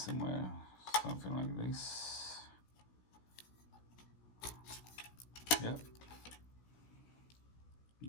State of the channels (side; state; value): right; late; 16 ms